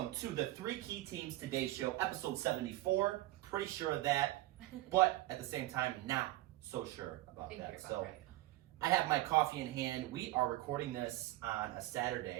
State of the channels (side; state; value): left; quieter; 17.0 dB